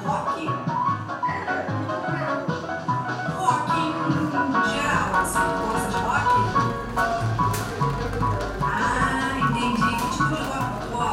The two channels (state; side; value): identical; both; correlation 1.00